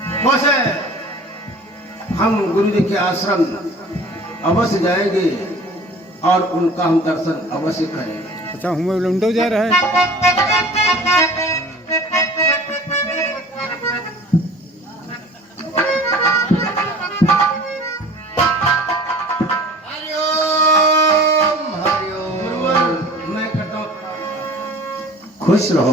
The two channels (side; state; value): both; normal; correlation 0.45